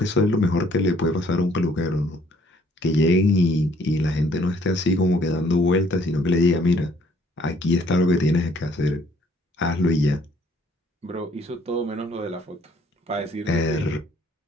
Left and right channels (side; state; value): both; normal; correlation 0.62